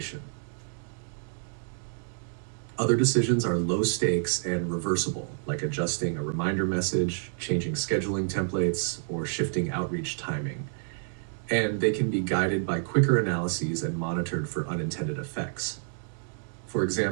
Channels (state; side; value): silent; left; digital silence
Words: Other decisions are low stakes and reversible, like adjusting a reminder message, changing scheduling templates, or shifting outreach timing. And they can be guided by quicker analyses and monitored for unintended effects. For